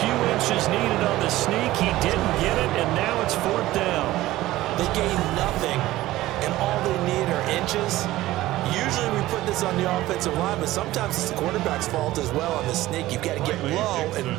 inches needed on the sneak. He didn't get it, and now it's fourth down. They gain nothing, and all they need are inches. Usually we put this on the offensive line, but sometimes it's the quarterback's fault as well on the sneak. You've got to get low and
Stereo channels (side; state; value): left; quieter; 16.4 dB